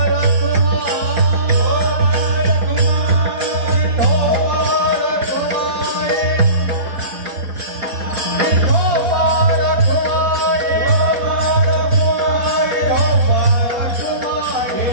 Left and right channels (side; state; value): left; late; 4.1 ms